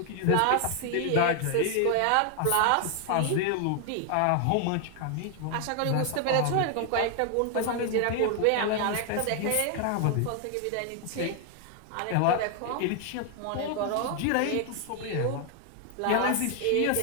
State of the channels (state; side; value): different; both; correlation 0.00